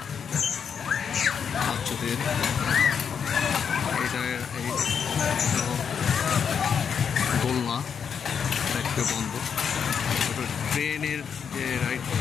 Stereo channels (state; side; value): quieter; right; 7.1 dB